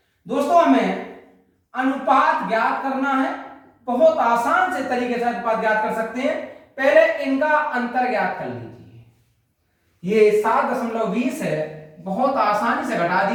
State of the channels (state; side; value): identical; both; correlation 1.00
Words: दोस्तों हमें अनुपात ज्ञात करना है। बहुत आसान से तरीके से अनुपात ज्ञात कर सकते हैं। पहले इनका अंतर ज्ञात कर लीजिए। ये 7.20 है, बहुत आसानी से घटा